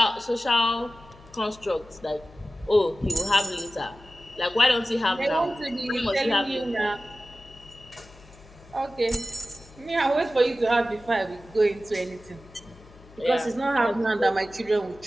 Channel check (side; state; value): left; noise; hum, 23 dB below the sound